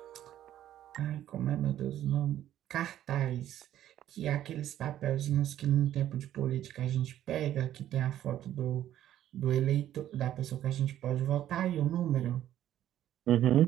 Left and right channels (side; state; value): left; quieter; 12.0 dB